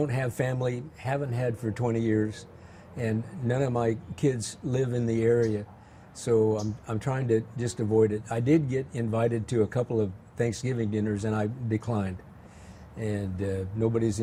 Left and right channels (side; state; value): both; identical; correlation 1.00